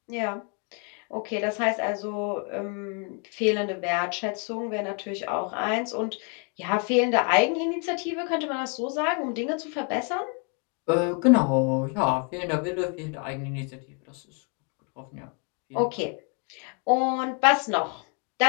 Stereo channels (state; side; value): quieter; right; 37.6 dB